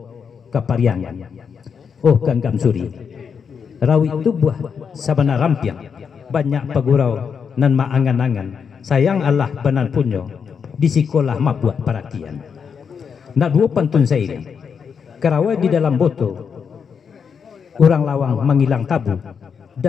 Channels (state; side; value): quieter; right; 6.5 dB